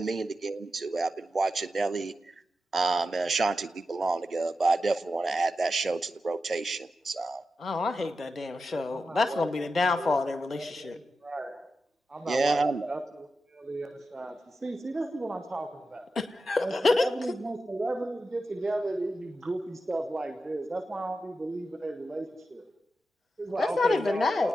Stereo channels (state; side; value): normal; both; correlation 0.90